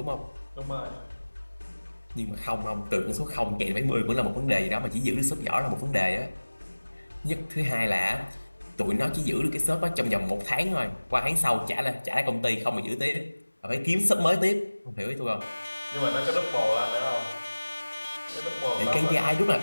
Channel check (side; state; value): both; inverted; correlation -1.00